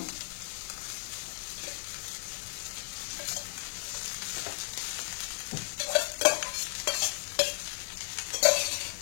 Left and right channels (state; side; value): silent; right; digital silence